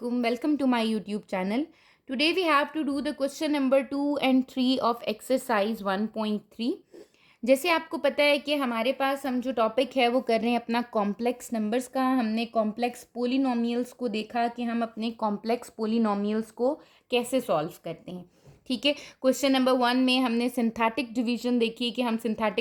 Welcome to my YouTube channel. Today we have to do the question number 2 and 3 of exercise 1.3. जैसे आपको पता है कि हमारे पास हम जो टॉपिक है वो कर रहे हैं अपना कॉम्प्लेक्स नंबर्स का। हमने कॉम्प्लेक्स पोलिनोमियल्स को देखा कि हम अपने कॉम्प्लेक्स पोलिनोमियल्स को कैसे सॉल्व करते हैं। ठीक है, क्वेश्चन नंबर 1 में हमने सिंथेटिक डिवीजन देखी कि हम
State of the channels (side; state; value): both; identical; correlation 1.00